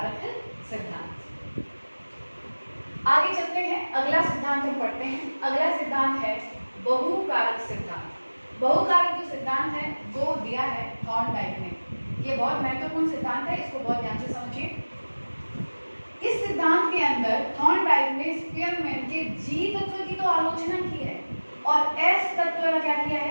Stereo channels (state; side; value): inverted; both; correlation -1.00